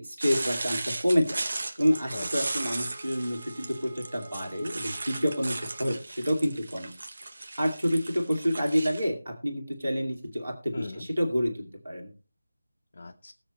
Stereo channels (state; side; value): inverted; both; correlation -0.96